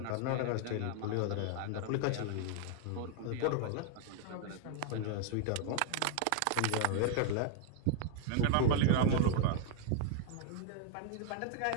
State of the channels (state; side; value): different; both; correlation 0.00